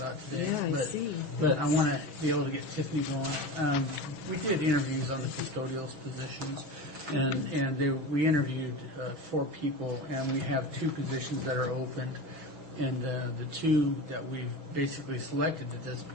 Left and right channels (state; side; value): late; left; 6.1 ms